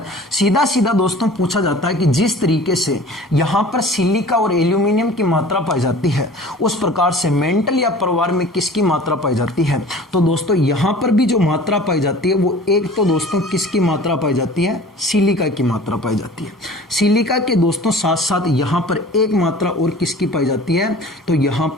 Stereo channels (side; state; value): both; normal; correlation 0.44